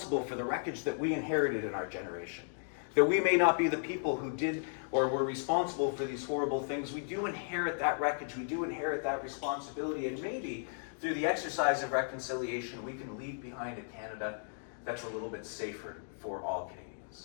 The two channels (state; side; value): silent; right; digital silence